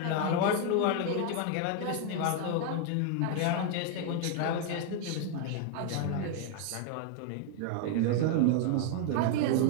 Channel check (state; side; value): different; both; correlation 0.00